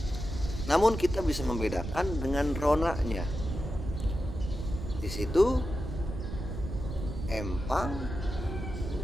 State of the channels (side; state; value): right; noise; rumble, 6 dB below the sound